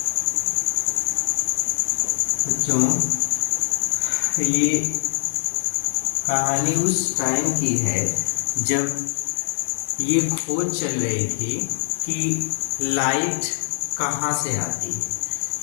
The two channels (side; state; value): right; silent; digital silence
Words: बच्चों ये कहानी उस टाइम की है जब ये खोज चल रही थी कि लाइट कहाँ से आती है।